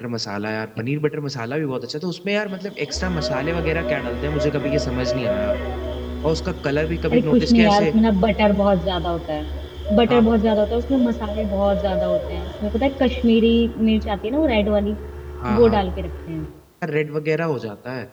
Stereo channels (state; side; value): identical; both; correlation 1.00